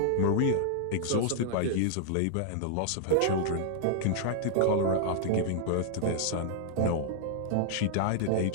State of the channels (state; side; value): different; both; correlation -0.01